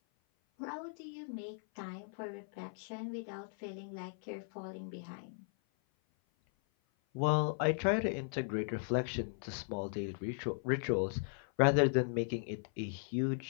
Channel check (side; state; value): right; silent; 53 dB below the other